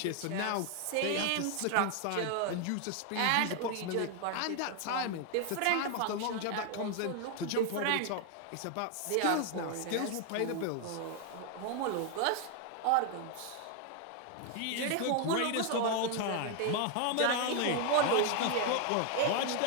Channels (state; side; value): different; both; correlation 0.00